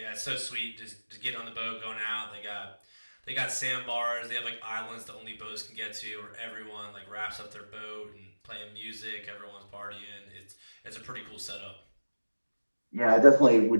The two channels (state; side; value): inverted; both; correlation -1.00